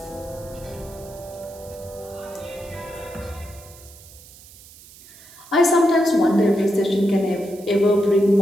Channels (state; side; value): noise; right; hiss, 21 dB below the sound